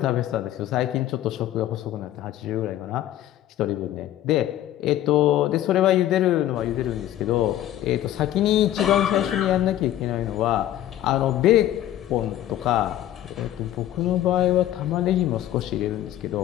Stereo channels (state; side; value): quieter; right; 12.8 dB